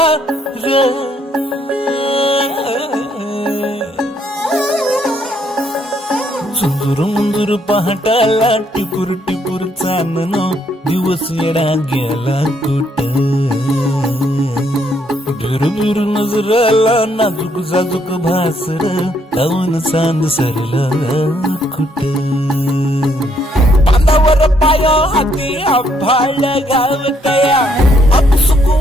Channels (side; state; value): both; normal; correlation 0.71